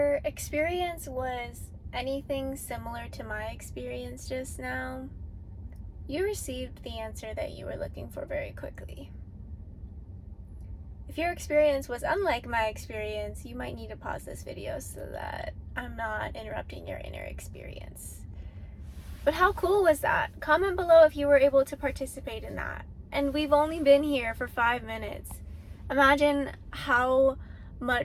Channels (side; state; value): both; identical; correlation 1.00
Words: experience was anything similar to my experience just now, you received the answer that you were looking for very quickly. If your experience was unlike my experience, you might need to pause this video so that I'm not interrupting your inner experience. But how cool was that? Comment below if you were able to participate in that. And we've only been here for 5 minutes. Imagine how